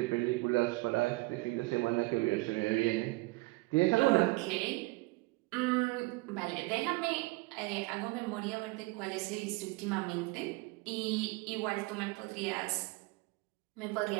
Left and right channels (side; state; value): left; quieter; 24.1 dB